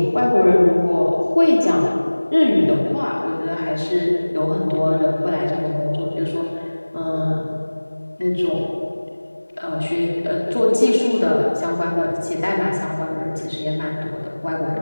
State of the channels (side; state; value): both; inverted; correlation -1.00